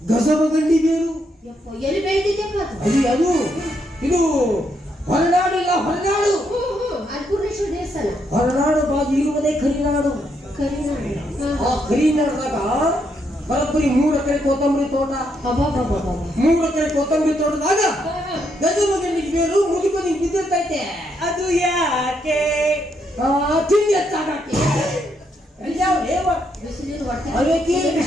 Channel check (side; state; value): both; normal; correlation 0.77